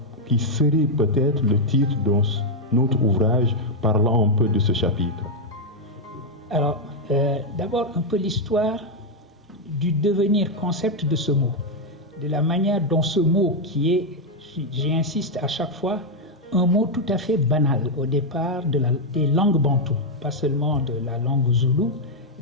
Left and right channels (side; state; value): both; normal; correlation 0.00